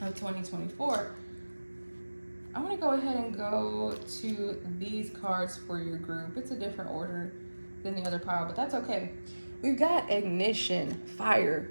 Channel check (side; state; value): both; inverted; correlation -1.00